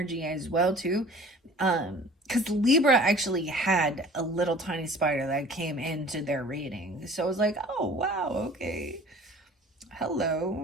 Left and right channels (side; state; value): both; normal; correlation 0.47